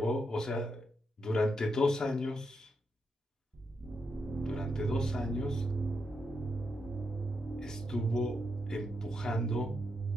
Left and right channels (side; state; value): both; normal; correlation 0.82